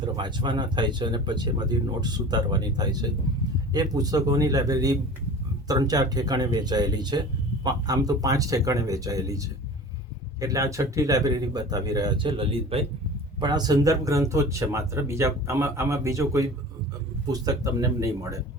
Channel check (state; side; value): normal; both; correlation 0.39